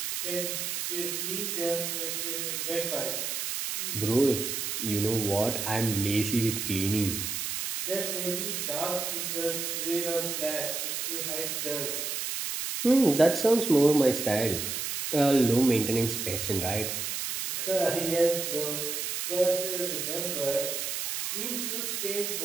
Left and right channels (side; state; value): right; noise; hiss, 3 dB below the sound